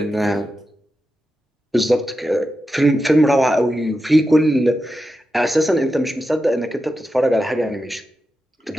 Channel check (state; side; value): normal; both; correlation 0.89